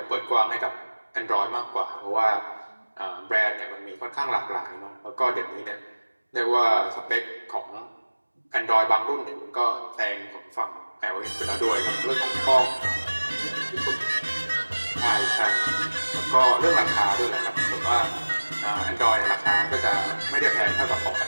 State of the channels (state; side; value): inverted; both; correlation -1.00